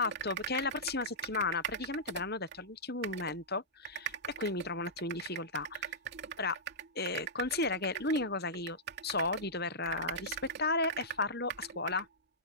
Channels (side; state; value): both; normal; correlation -0.13